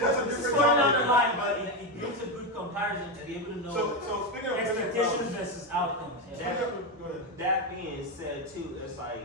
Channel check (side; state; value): both; normal; correlation 0.10